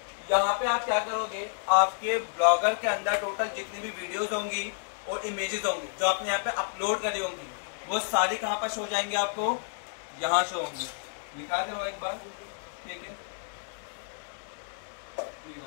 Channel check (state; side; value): silent; right; digital silence